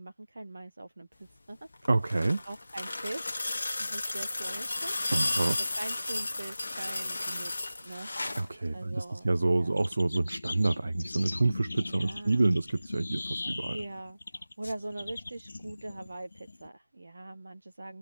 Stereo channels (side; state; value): both; inverted; correlation -0.97